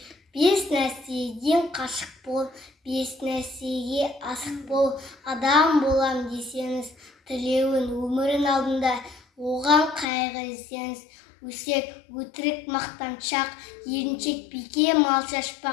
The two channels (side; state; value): right; drops out; at 10.1 s